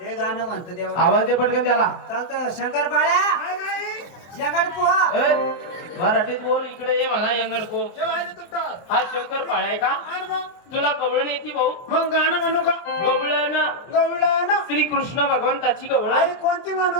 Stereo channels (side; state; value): right; late; 23 ms